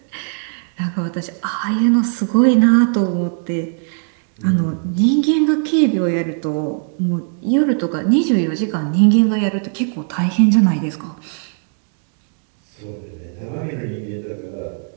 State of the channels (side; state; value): left; silent; 66 dB below the other